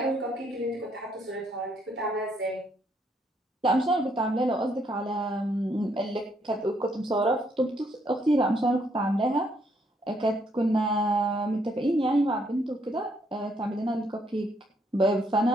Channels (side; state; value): both; normal; correlation 0.72